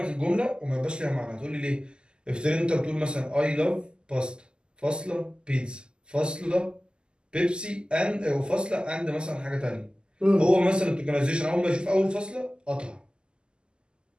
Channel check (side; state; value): left; late; 0.048 ms